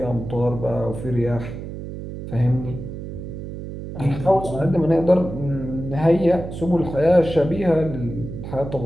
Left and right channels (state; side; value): noise; right; hum, 9 dB below the sound